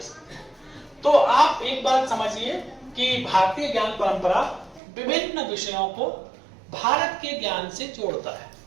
सकते हैं। तो आप एक बात समझिए कि भारतीय ज्ञान परंपरा विभिन्न विषयों को भारत के ज्ञान से जोड़ता है,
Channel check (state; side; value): drops out; left; at 4.8 s